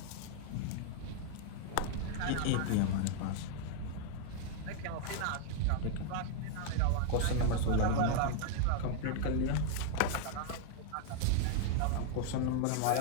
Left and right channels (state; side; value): different; both; correlation 0.00